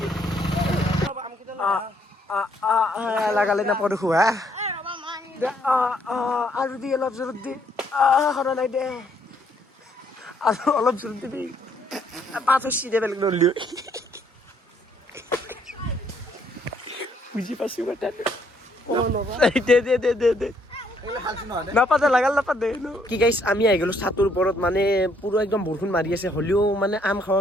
লাগালে নাপাওঁ দেখো হা। আৰু দি অলপ জোৰত দি সৰা নাই দে, আৰু অলপ জোৰত দিবি। পাঁচ দে বেলেগ নলি বুজি পাইছো কথাটো। দে নাপাতে লাগাল নাপাতে কি গাইছ। আমি আহি গ'লো ছাতৰ ওপৰত, মানে পুৰা একদম বৰষুণ মাৰি আছে, হ'লেও মানে আম খাৱা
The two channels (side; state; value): both; normal; correlation 0.69